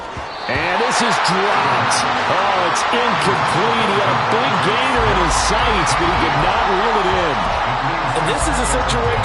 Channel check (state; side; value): identical; both; correlation 1.00